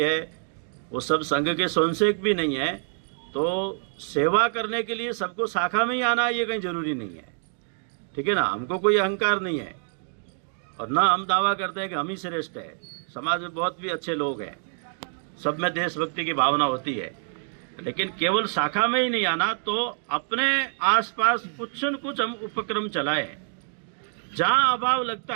है, वो सब संघ के स्वयंसेवक भी नहीं है। तो सेवा करने के लिए सबको शाखा में ही आना ये कहीं जरूरी नहीं है, ठीक है ना। हमको कोई अहंकार नहीं है, और ना हम दावा करते हैं कि हम ही श्रेष्ठ है। समाज में बहुत भी अच्छे लोग हैं, सब में देशभक्ति की भावना होती है, लेकिन केवल शाखा में ही नहीं आना। तो अपने आसपास कुछ न कुछ हम उपक्रम चलाएं, जहां अभाव लगता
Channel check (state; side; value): silent; left; 61 dB below the other